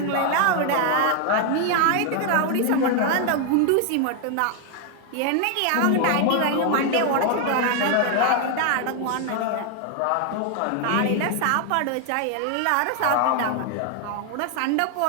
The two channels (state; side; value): different; both; correlation 0.00